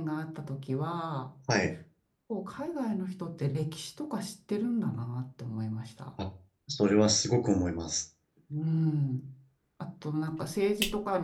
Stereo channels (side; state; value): both; identical; correlation 1.00